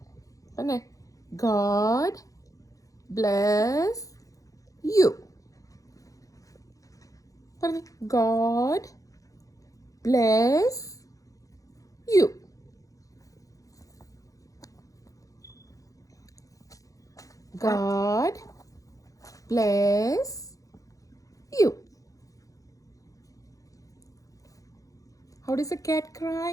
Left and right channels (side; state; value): right; late; 0.16 ms